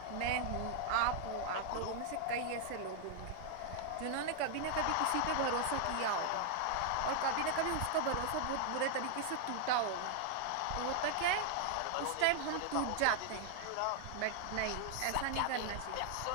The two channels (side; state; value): both; different; correlation 0.00